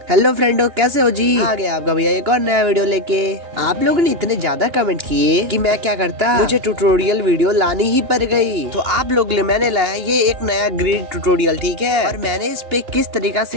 Hello friendo, कैसे हो जी? आ गया आपका भैया एक और नया वीडियो लेके। आप लोगों ने इतने ज्यादा कमेंट किए कि मैं क्या करता, मुझे ट्यूटोरियल वीडियो लानी ही पड़ गई। तो आप लोग लिए मैंने लाया ये एक नया ग्रिड ट्यूटोरियल, ठीक है। और मैंने इस पे किस तरीका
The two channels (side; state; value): left; late; 2.9 ms